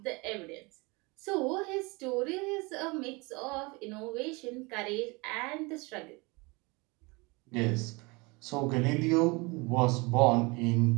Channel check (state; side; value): quieter; left; 26.6 dB